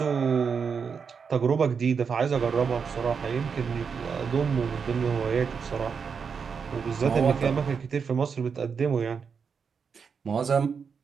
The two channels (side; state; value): left; quieter; 6.1 dB